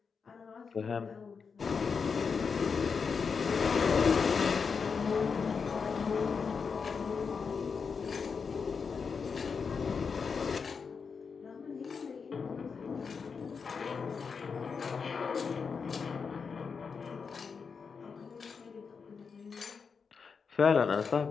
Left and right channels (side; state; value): right; quieter; 5.6 dB